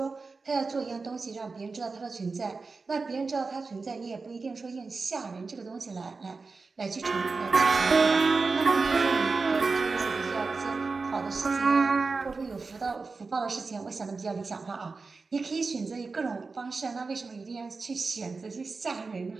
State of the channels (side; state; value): left; quieter; 4.2 dB